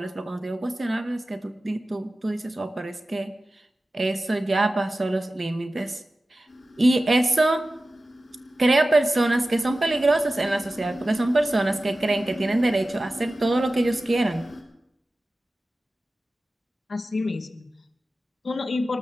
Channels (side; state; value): both; normal; correlation 0.95